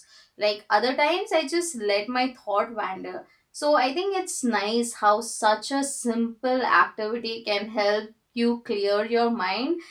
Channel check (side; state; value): both; identical; correlation 1.00